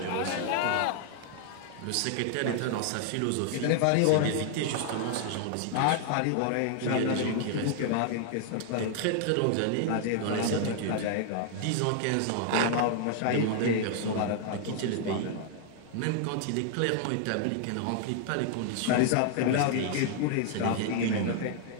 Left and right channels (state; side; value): different; both; correlation 0.00